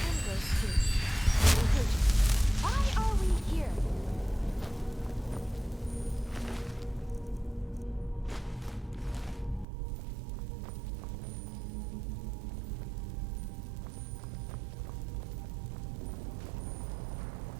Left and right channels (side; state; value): left; drops out; at 9.7 s